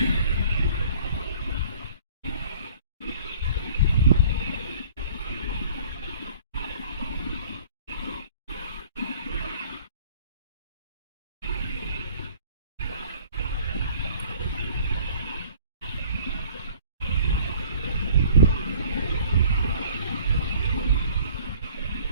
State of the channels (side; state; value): both; inverted; correlation -0.51